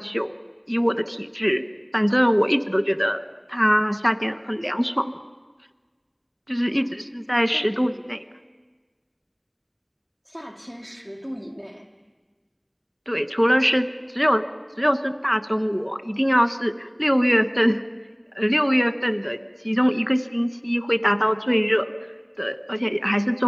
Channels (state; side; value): identical; both; correlation 1.00